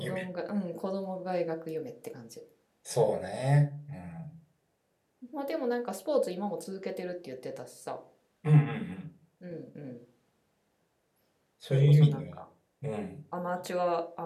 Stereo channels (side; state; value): both; identical; correlation 1.00